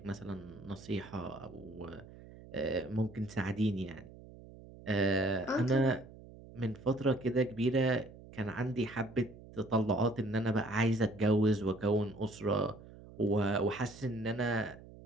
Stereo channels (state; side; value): noise; right; hum, 18 dB below the sound